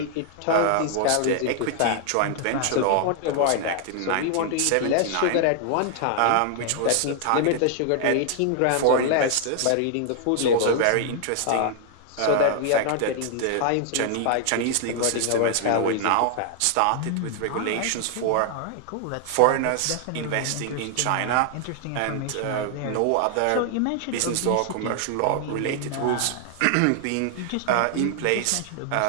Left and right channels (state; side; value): different; both; correlation 0.00